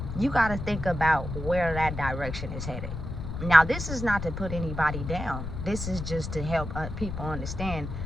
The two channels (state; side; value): noise; left; rumble, 6 dB below the sound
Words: you got to think about where that direction is headed. Now, this is not to put anybody down. This is just to help people understand.